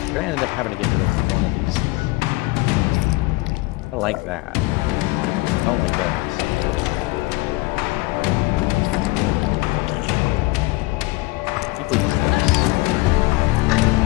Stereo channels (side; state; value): right; quieter; 22.2 dB